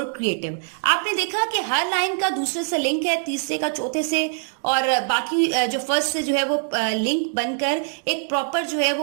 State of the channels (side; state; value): left; silent; digital silence